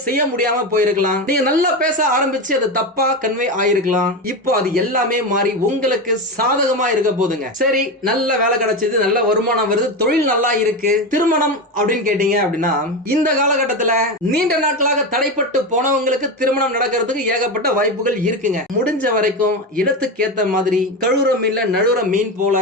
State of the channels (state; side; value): normal; both; correlation 0.18